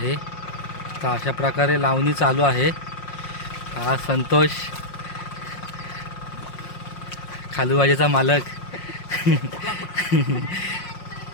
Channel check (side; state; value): right; late; 5.6 ms